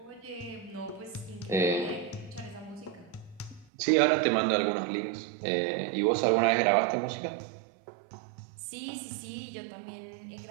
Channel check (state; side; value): drops out; left; at 3.7 s